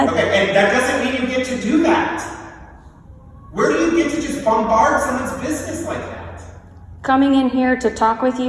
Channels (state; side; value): identical; both; correlation 1.00